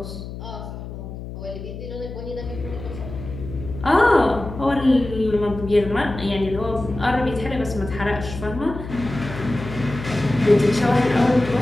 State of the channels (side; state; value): left; noise; hum, 10 dB below the sound